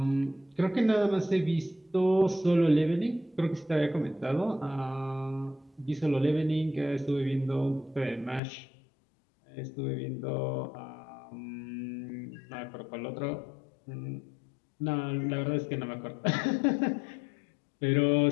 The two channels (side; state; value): right; drops out; at 8.4 s